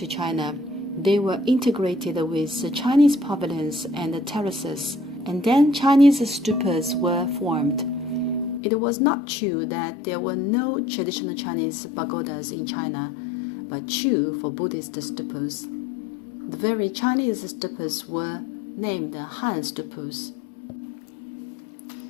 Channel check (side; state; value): right; drops out; at 8.6 s